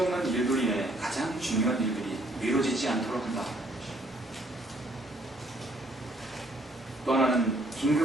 일들 인해 가장 중요한 일들이 미뤄지지 않도록 한다. 또 하나는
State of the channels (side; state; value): both; normal; correlation 0.65